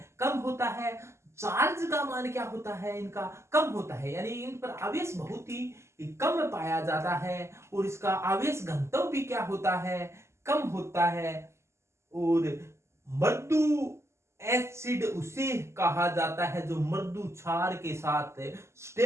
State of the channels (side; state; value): left; late; 0.13 ms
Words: कम होता है। चार्ज का मान क्या होता है, इनका कम होता है, यानी इन पर आवेश बहुत ही कम पाया जाता है, और इसका आवेश घनत्व भी क्या होता है, कम होता है। और मृदु एसिड उसे कहा जाता है जो मृदु क्षार के साथ